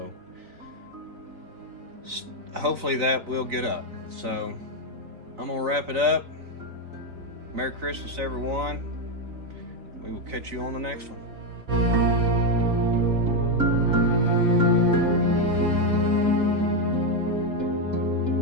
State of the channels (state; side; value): late; left; 3.9 ms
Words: hopefully that will get up. So I'm gonna wrap it up. Merry Christmas, everyone. We will catch you on the next one.